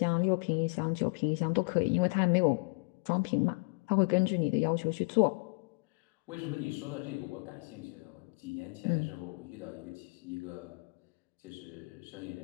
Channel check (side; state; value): right; quieter; 32.2 dB